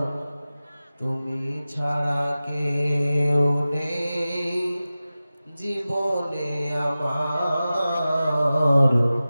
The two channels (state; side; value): inverted; both; correlation -0.95